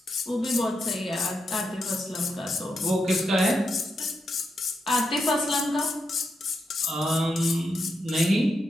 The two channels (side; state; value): both; normal; correlation 0.84